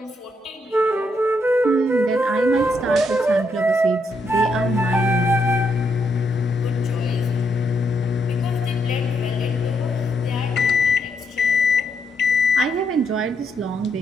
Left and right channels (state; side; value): normal; both; correlation 0.77